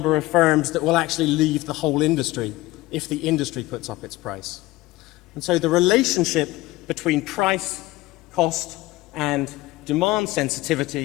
of firms that will actually leave the whole industry if the industry puts up its price. And so the relationship between price, cost, and demand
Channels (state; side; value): quieter; right; 18.8 dB